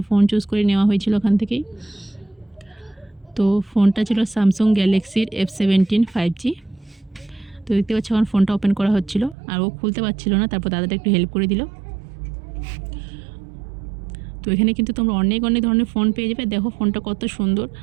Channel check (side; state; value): left; drops out; at 9.3 s